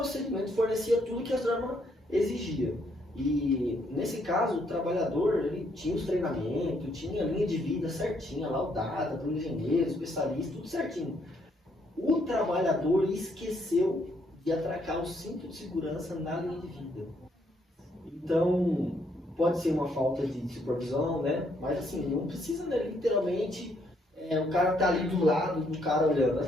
fornecia tudo que a norma exigia. E nesse caso, o trabalhador, ele tinha os treinamentos, tinha a linha de vida certinha, laudada, para o engenheiro, especialista, tudo certinho. O trabalhador esqueceu de atracar o cinto de segurança na linha de vida. Então, pode ser uma falta de supervisão, né? Mas assim, não precisa, né, literalmente, o cara tá ali do lado do cara olhando. Às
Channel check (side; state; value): both; normal; correlation 0.72